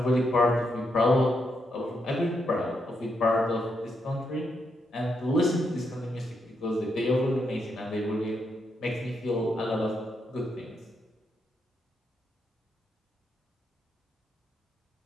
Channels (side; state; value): both; normal; correlation 0.80